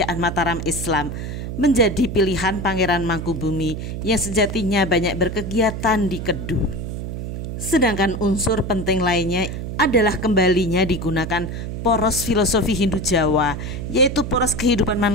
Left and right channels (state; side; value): noise; right; hum, 6 dB below the sound